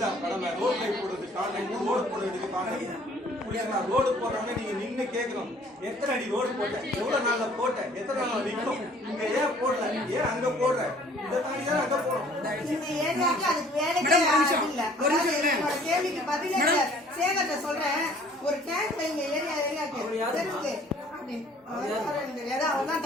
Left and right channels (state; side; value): normal; both; correlation 0.55